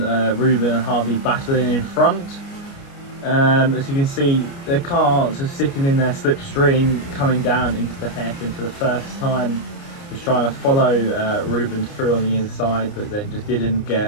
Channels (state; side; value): late; right; 29 ms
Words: Ruben and Harvey battling in front. As you can see, the cars are sitting in their slipstream, coming down into the hairpin for the first time. Was trying to follow Ruben through on the inside, but then just didn't